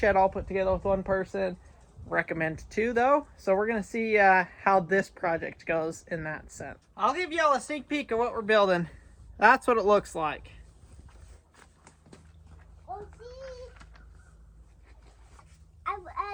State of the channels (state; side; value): identical; both; correlation 1.00